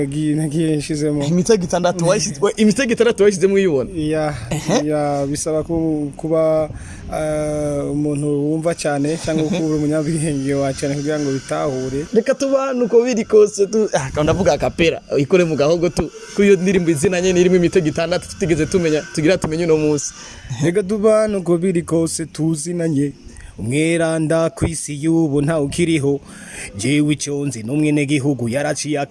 nshizemo imitego 6 washizemo uyibona ya bisaba kuba umuntu wumva cyane cyangwa kuba umunyabwenge wa cyane kugira ngo bitahure reka tuba nuko biri kose ndavuga akapera ikore mu gahogo kuyo ndirimbo izinanye nirimo imitego 6 tutigeze tumenye uno munsi reka tuba nuko biri kose tuzinanye umweranda kwisi yubu nta ukiriho jewe icyonzi n'umwene gihugu yaraciye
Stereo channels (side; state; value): both; identical; correlation 1.00